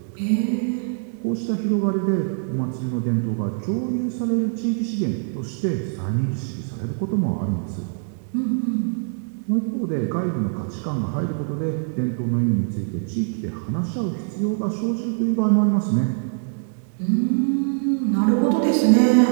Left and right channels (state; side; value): silent; left; digital silence